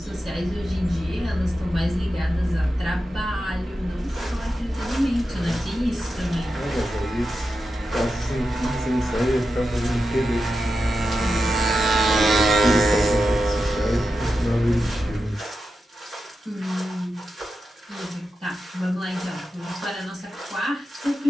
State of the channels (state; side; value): normal; both; correlation 0.90